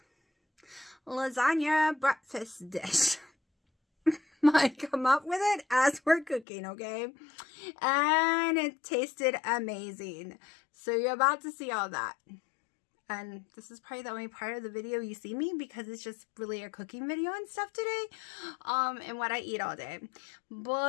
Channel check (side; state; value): right; drops out; at 6.5 s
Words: lasagna breakfast dish. I come up with it as we're cooking, okay? And it tasted amazing. So you're about to see all that. And this is probably the only part of the video you see me, because it's just really a cooking video and stuff today. And what I eat all day.